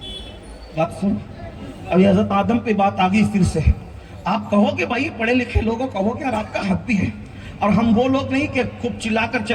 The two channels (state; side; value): identical; both; correlation 1.00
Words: بات سن، ابھی حضرت آدم پہ بات آ گئی پھر سے۔ آپ کہو کہ بھائی پڑھے لکھے لوگوں کہو کہ یار آپ کا حق بھی ہے، اور ہم وہ لوگ نہیں کہ خوب چلا کر